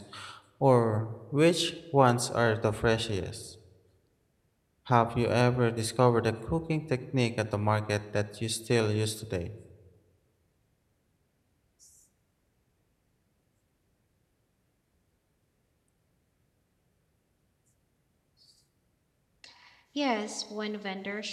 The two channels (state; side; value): identical; both; correlation 1.00